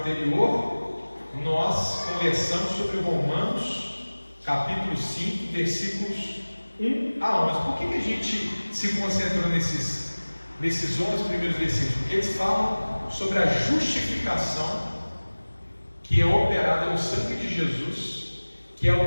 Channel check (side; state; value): both; inverted; correlation -1.00